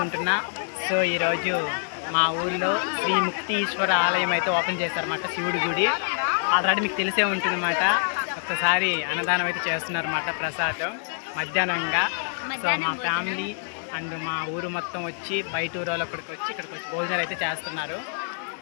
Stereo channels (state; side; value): silent; right; digital silence